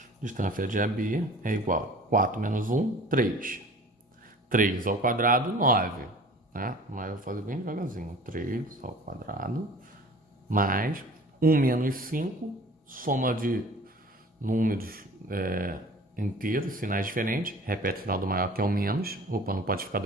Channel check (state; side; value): normal; both; correlation 0.45